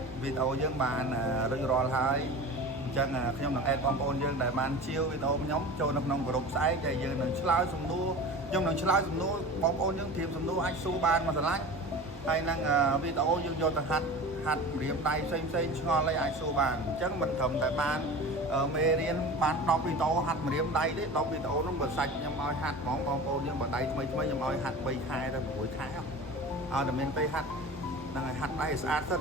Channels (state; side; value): normal; both; correlation 0.35